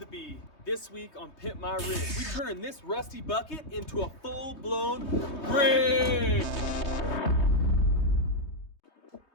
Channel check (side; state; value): right; late; 3.2 ms